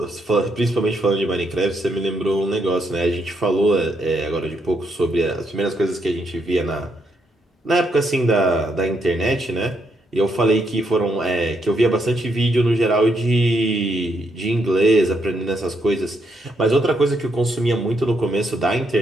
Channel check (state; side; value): normal; both; correlation 0.77